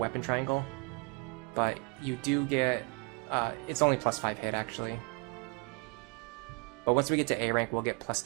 triangle, but you do get, it's only +5 hit actually. But once we get to A rank, we'll get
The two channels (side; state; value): left; quieter; 29.2 dB